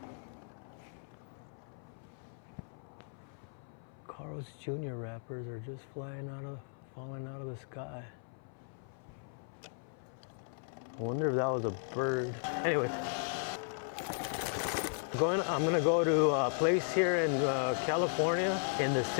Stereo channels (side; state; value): right; silent; 54 dB below the other